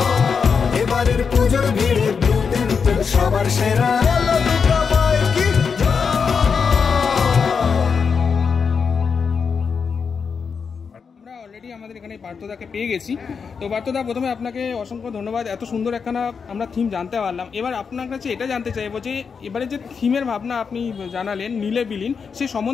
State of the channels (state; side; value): quieter; right; 5.9 dB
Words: এবারের পুজোর ভিড়ে ব্লু টেম্পল সবার সেরা আমরা অলরেডি আমাদের এখানে পার্থদাকে পেয়ে গেছি। তো পার্থদা, প্রথমে আপনাকে অসংখ্য ধন্যবাদ, এত সুন্দর একখানা আমরা থিম জানতে পারলাম। এবার আপনার কাছে এটা জানতে চাইবো যে এবারে যে থিমের ভাবনা আপনি জানালেন নীলে বিলীন, সে